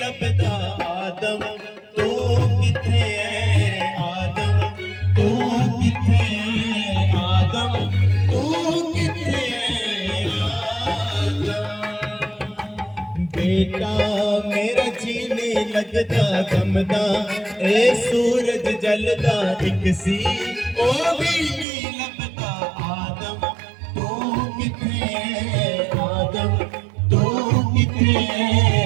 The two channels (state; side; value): drops out; left; at 21.7 s